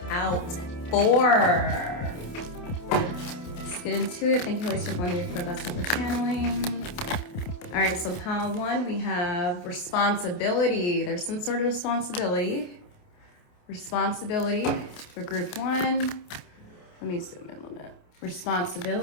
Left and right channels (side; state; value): right; late; 28 ms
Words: out for? Let's get into it. Thank you, Holy Spirit, for the best for channeling. All right, so pile 1, we have responsibility. There's some sort of responsibility. Responsibility for group 1. Let me zoom in a little bit.